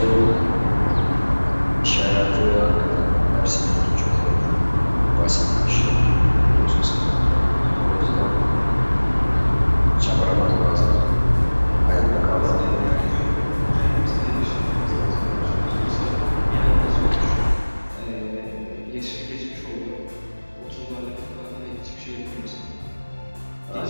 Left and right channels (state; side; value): inverted; both; correlation -1.00